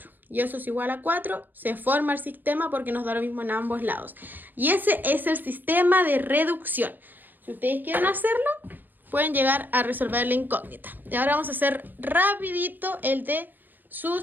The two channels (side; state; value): left; late; 0.088 ms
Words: Y eso es igual a 4. Se forma el sistema porque nos da lo mismo en ambos lados. Y ese es el sistema de reducción. Si ustedes quieren hacerlo, pueden llegar a resolver la incógnita. Y ahora vamos a hacer rapidito el de